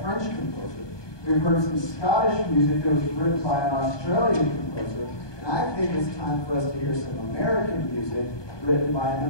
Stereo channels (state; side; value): late; right; 1.2 ms